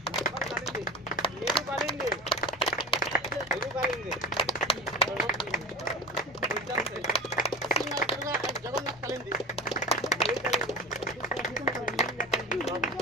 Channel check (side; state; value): both; normal; correlation 0.32